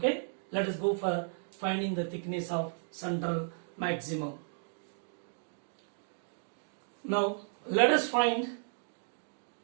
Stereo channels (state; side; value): silent; left; digital silence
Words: Let us go for finding the thickness of central maximum. Now let us find